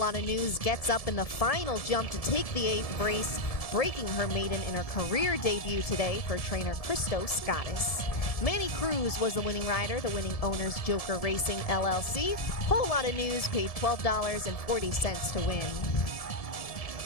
of news gets up in the final jump to take the 8th race, breaking her maiden in her career debut today for trainer Christo Scottis. Manny Cruz was the winning rider, the winning owner's Joker Racing LLC. Whole lot of news paid $12.40 to win.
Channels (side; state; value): right; late; 1.7 ms